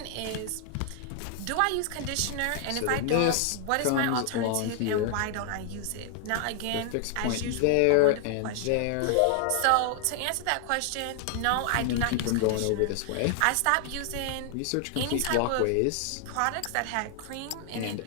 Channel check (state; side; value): different; both; correlation 0.00